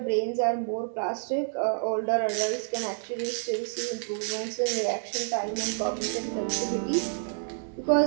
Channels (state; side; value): silent; left; digital silence